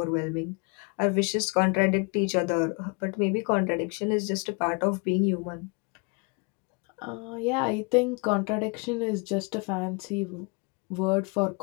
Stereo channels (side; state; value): right; quieter; 32.2 dB